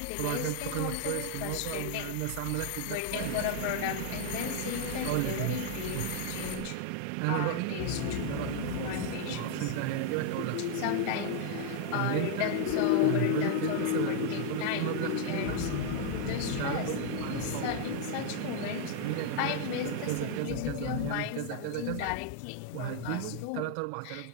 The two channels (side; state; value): both; different; correlation 0.00